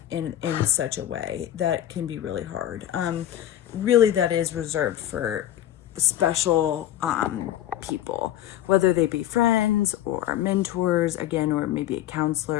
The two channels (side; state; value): right; quieter; 12.2 dB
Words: in such a way that can be really hard. Really, that is reserved for special people, whether they be friends or mentors, again, or maybe a